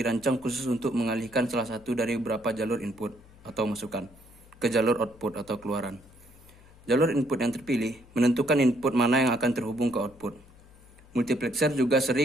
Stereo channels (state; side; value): noise; left; hum, 24 dB below the sound